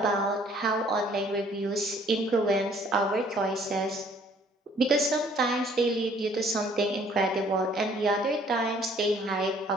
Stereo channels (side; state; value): both; normal; correlation 0.59